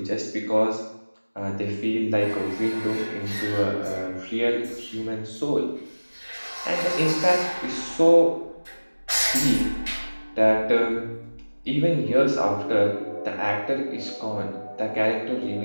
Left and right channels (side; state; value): both; inverted; correlation -1.00